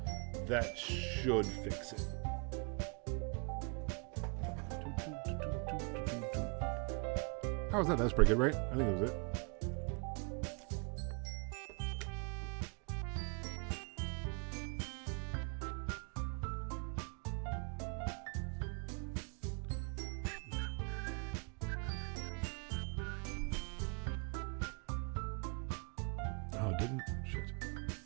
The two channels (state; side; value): quieter; left; 35.2 dB